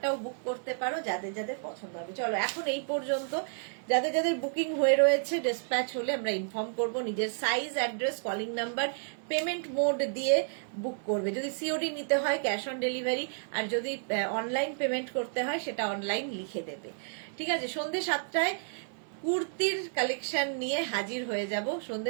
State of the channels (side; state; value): left; silent; 57 dB below the other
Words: বুক করতে পারো যাদের যাদের পছন্দ হবে। চলো এখন এই পর্যন্ত, যাদের যাদের বুকিং হয়ে রয়েছে ডিসপ্যাচ হলে আমরা ইনফর্ম করব। নিজের size, address, calling number, payment mode দিয়ে বুক করবে। যদি সিওডি নিতে হয় ক্যাশ অন ডেলিভারি, আর যদি অনলাইন পেমেন্ট করতে হয় সেটা অনলাইন লিখে দেবে। ঠিক আছে, সন্ধ্যে 7টায় কুর্তির কালেকশন নিয়ে হাজির হয়ে যাব।